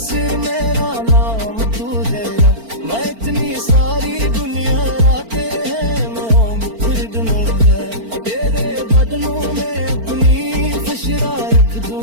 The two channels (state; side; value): late; left; 4.4 ms